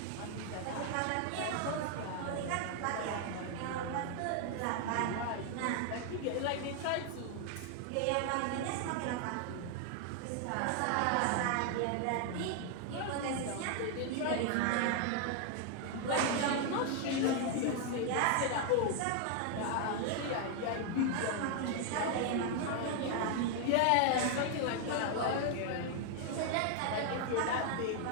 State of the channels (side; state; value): both; different; correlation 0.00